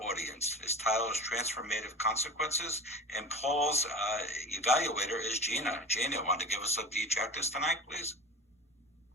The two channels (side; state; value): both; normal; correlation 0.34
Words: audience. His title is Transformative Consequences, and Paul's evaluator is Gina. Gina, want to give us the objectives tonight, please?